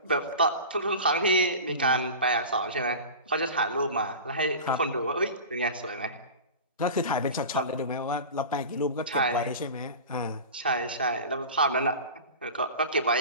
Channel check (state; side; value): inverted; both; correlation -0.32